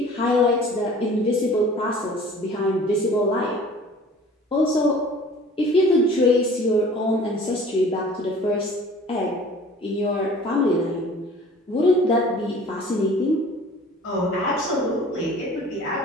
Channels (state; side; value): normal; both; correlation 0.47